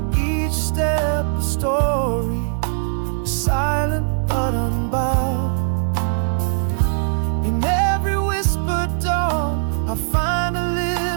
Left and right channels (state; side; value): silent; left; digital silence